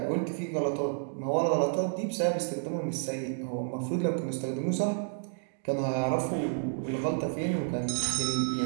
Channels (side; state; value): left; silent; digital silence